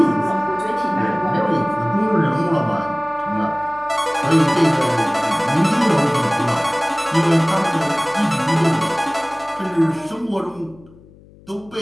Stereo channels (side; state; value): left; noise; hum, 25 dB below the sound